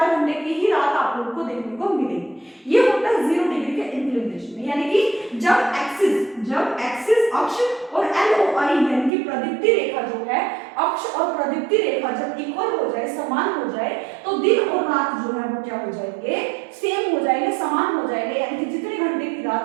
घंटे की ही रात आप लोगों को देखने को मिलेगी। ये होता है 0 डिग्री के इंक्लिनेशन में, यानी कि जब एक्सिस अक्ष और LOI यानी कि प्रदीप्ति रेखा जो है, अक्ष और प्रदीप्ति रेखा जब इक्वल हो जाए, समान हो जाए, तो दिन और रात जो है वो क्या हो जाएंगे, सेम हो जाएंगे, समान हो जाएंगे, यानी कि जितने घंटे की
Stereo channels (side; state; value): left; drops out; at 9.1 s